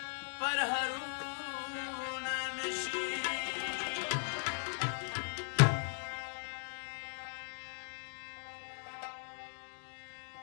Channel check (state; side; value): silent; right; digital silence